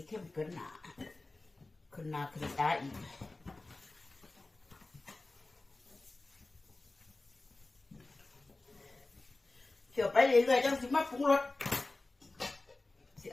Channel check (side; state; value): right; quieter; 3.1 dB